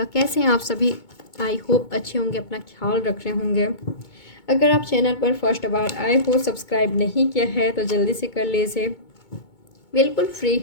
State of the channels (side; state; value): right; late; 2.2 ms